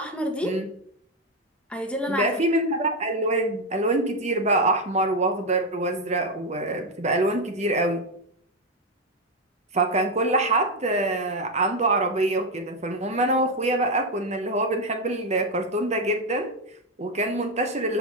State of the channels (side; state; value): both; normal; correlation 0.07